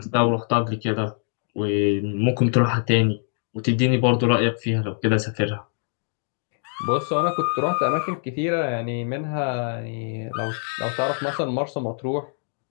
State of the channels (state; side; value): silent; right; digital silence